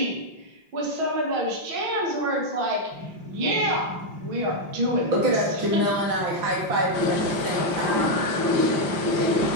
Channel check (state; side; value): late; left; 5.6 ms